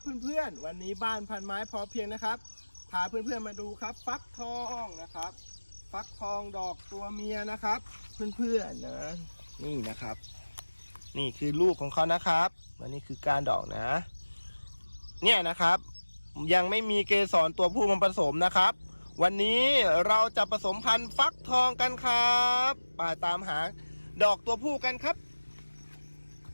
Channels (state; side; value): inverted; both; correlation -1.00